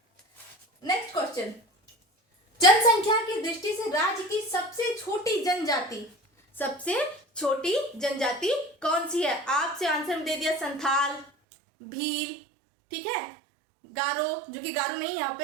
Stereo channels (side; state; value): left; drops out; at 11.2 s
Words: नेक्स्ट क्वेश्चन, जनसंख्या की दृष्टि से राज्य की सबसे छोटी जनजाति कौन सी है? आपसे आंसर दे दिया संथाल, भील, ठीक है, गारो, जो कि गारो नहीं यहाँ